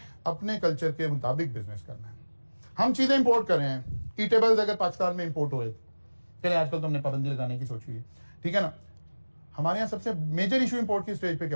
अपने कल्चर के मुताबिक बिजनेस करना है। हम चीजें इंपोर्ट कर रहे हैं। ईटेबल्स अगर पाकिस्तान में इंपोर्ट हो, चले आजकल तो हमने पाबंदी लगाने की सोची है, ठीक है ना। हमारे यहाँ सबसे मेजर इशू इंपोर्ट की स्टेज पे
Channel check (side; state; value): both; inverted; correlation -1.00